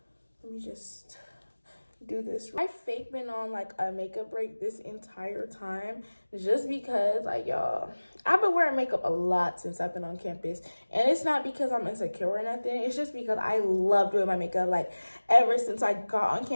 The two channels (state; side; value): inverted; both; correlation -1.00